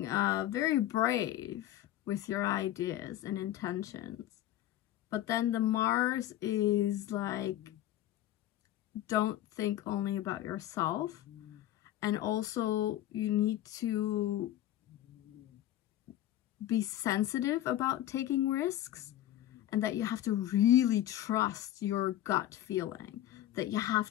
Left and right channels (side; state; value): right; quieter; 13.1 dB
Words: very brave with your ideas and intentions. But then the Mars is like, don't think only about yourself. And also you need to be sensitive about taking risks, and that you have to really trust your gut feeling, that you have